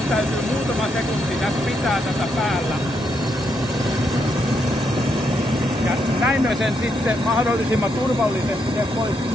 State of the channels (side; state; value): both; normal; correlation 0.78